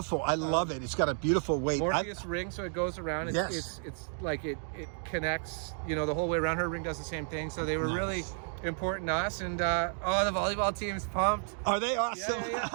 I love it. It's got a beautiful weight. Morpheus ring, so it goes around. It's like it connects, the whole way around. Her ring does the same thing. So they were really important to us. And the volleyball team's pumped. Are they awesome? Yeah.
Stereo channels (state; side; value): silent; left; 56 dB below the other